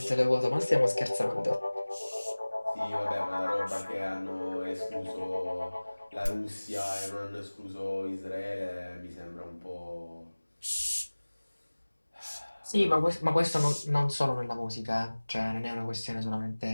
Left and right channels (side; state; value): both; inverted; correlation -1.00